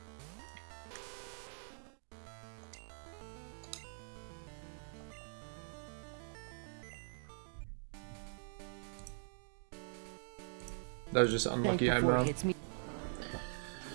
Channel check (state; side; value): silent; left; digital silence